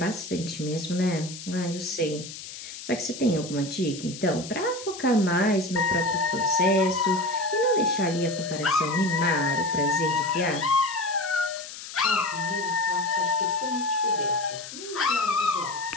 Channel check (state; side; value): noise; left; hiss, 12 dB below the sound